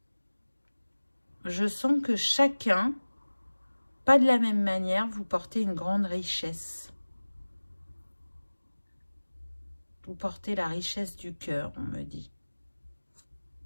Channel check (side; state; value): both; inverted; correlation -1.00